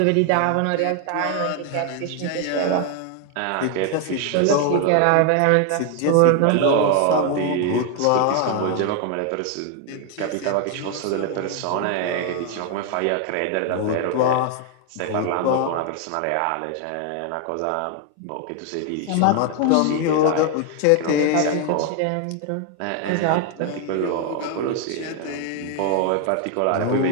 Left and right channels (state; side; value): different; both; correlation 0.00